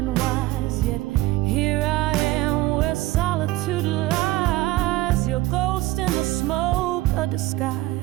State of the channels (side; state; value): left; quieter; 17.7 dB